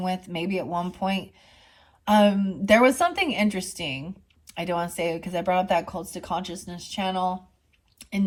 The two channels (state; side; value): identical; both; correlation 1.00